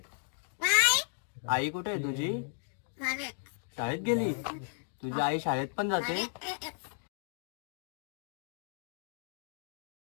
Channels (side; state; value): right; silent; digital silence